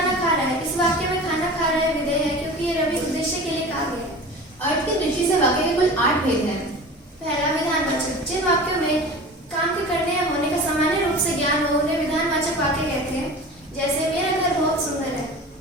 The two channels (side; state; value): both; normal; correlation 0.37